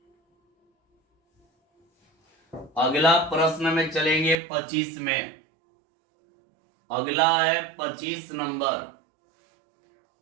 अगला प्रश्न में चलेंगे 25 में। अगला है 25 नंबर।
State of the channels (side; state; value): left; drops out; at 4.4 s